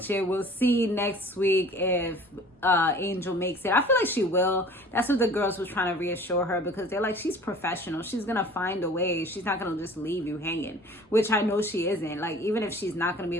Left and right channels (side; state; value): both; normal; correlation 0.46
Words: it. We'll see next week if Angel makes it. I feel like she will. That's what the girls was trying to reassure her, because they're like, she's professional. She's gonna find a way. She's not gonna just leave you hanging, which I know she isn't. Like, even if she's not gonna be